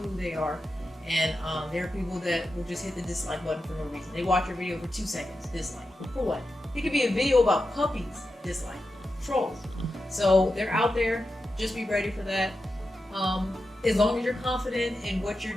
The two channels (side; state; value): both; normal; correlation 0.90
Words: they are. And there are people that will just hit the dislike button for no reason. They watch your video for 2 seconds, dislike. For what? It could be a video about puppies, dislike. Trolls. So they're out there. Just be ready for that. As long as you're confident in what